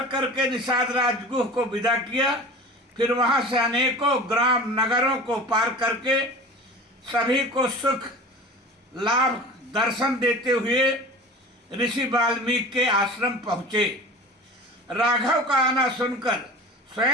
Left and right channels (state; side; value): normal; both; correlation 0.37